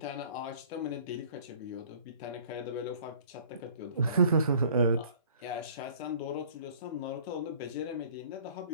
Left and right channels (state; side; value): inverted; both; correlation -0.51